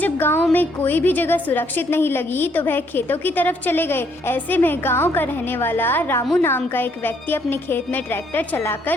गांव में कोई भी जगह सुरक्षित नहीं लगी तो वह खेतों की तरफ चले गए। ऐसे में गांव का रहने वाला रामू नाम का एक व्यक्ति अपने खेत में ट्रैक्टर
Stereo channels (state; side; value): normal; both; correlation 0.69